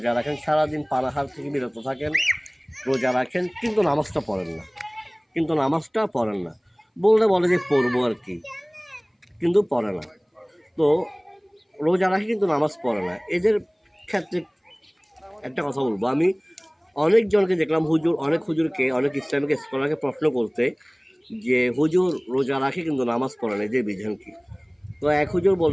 রাখেন সারাদিন পানাহার থেকে বিরত থাকেন, রোজা রাখেন কিন্তু নামাজটা পড়েন না। বললে বলে যে পড়বো আর কি, কিন্তু পড়ে না। তো রোজা রাখে কিন্তু নামাজ পড়ে না। এদের ক্ষেত্রে একটা কথা বলবো, আমি অনেকজনকে দেখলাম, অনেক হুজুরকে, অনেক ইসলামিক স্কলারকে প্রশ্ন করতে যে হুজুর রোজা রাখে কিন্তু নামাজ পড়ে না, এদের বিধান কি? তো এক হুজুর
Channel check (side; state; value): both; identical; correlation 1.00